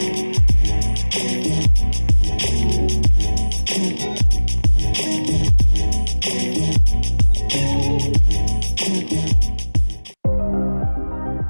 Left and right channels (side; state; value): both; inverted; correlation -1.00